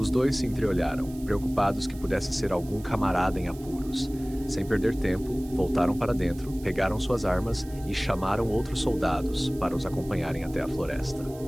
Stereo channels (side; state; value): right; noise; hiss, 21 dB below the sound